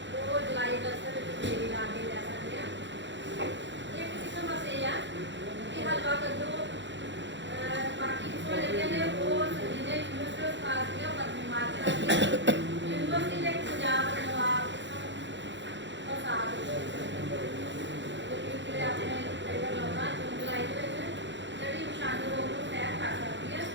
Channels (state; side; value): late; left; 0.53 ms